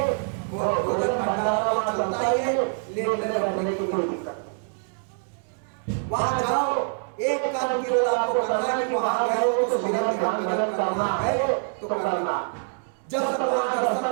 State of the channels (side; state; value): left; silent; 61 dB below the other